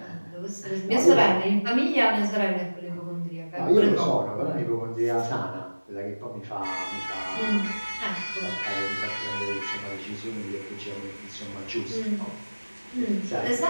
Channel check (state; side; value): inverted; both; correlation -1.00